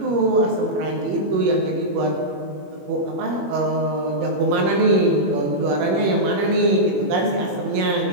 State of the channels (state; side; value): late; left; 21 ms